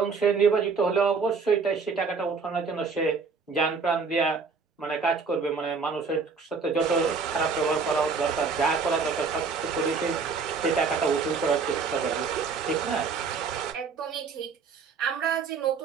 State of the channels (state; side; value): quieter; left; 5.1 dB